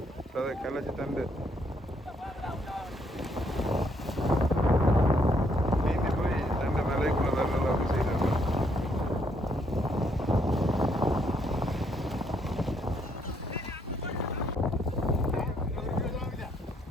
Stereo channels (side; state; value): both; normal; correlation 0.72